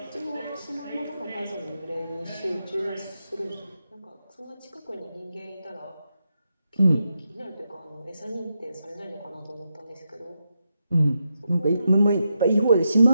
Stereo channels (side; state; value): both; inverted; correlation -0.85